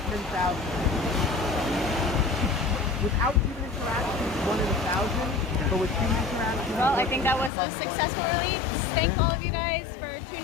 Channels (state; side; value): drops out; right; at 7.5 s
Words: Without human interaction, it's 1 in 1,000. But with human interaction, Well, I think that was a successful release. Thank all of you guys for